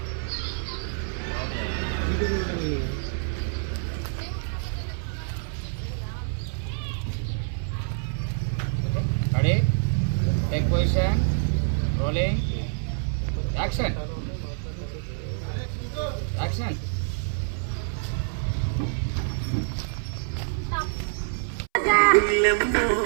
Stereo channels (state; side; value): silent; left; 60 dB below the other